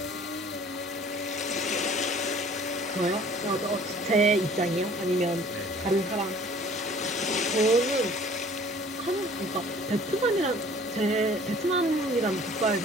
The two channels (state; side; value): normal; both; correlation 0.52